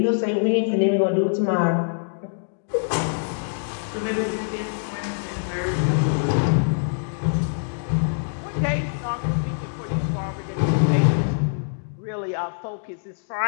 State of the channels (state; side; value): silent; right; digital silence